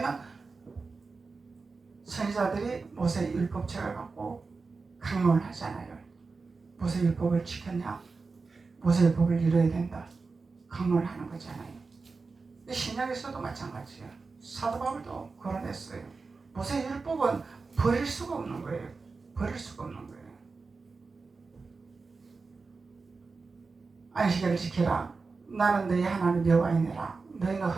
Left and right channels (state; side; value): quieter; left; 4.3 dB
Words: 선지자들이 모세 율법책을 갖고 강론을 하잖아요. 모세 율법을 지켰냐? 모세 율법을 이뤄야 된다. 강론을 하는 거잖아요. 신약에서도 마찬가지예요. 사도 바울도 거론했어요. 모세 율법은 버릴 수가 없는 거예요. 버릴 수가 없는 거예요. 안식일을 지켜라. 나는 너희 하나님 여호와이니라. 너희는